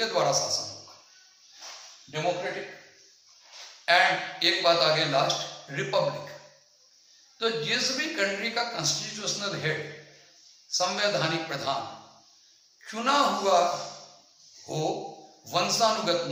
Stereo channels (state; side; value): identical; both; correlation 1.00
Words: द्वारा शासन होगा, डेमोक्रेटिक। एंड एक बात आगे लास्ट, रिपब्लिक। तो जिस भी कंट्री का कॉन्स्टिट्यूशनल हेड, संवैधानिक प्रधान चुना हुआ हो, वंशानुगत